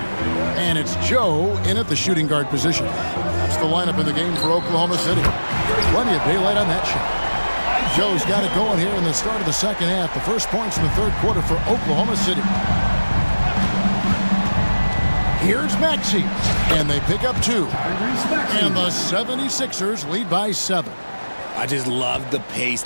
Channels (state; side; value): inverted; both; correlation -1.00